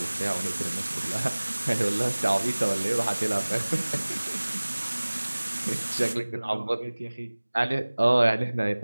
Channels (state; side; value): inverted; both; correlation -1.00